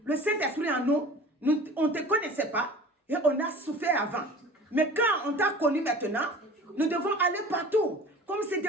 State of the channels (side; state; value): both; normal; correlation 0.41